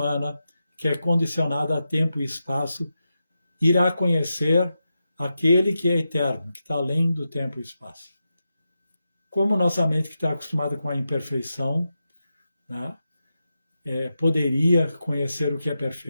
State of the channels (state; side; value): inverted; both; correlation -0.89